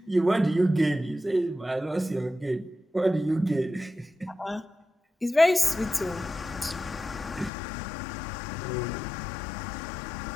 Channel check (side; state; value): right; drops out; at 7.5 s